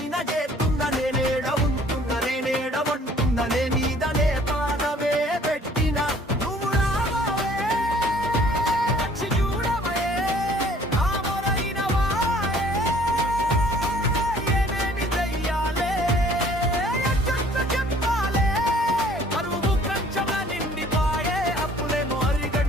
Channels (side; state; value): both; normal; correlation 0.56